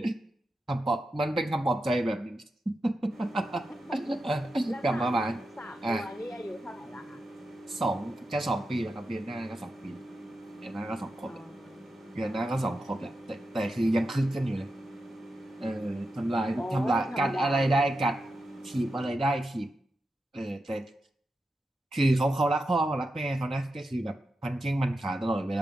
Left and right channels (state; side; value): normal; both; correlation 0.89